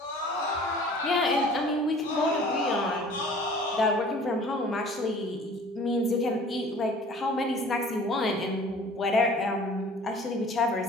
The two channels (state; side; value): normal; both; correlation 0.48